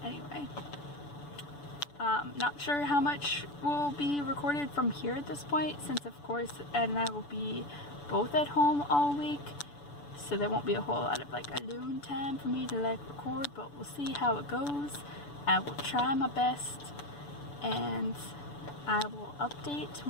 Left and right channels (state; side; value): late; right; 6.9 ms